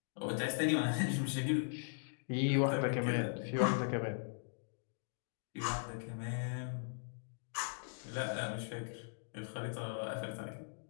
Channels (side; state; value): right; silent; digital silence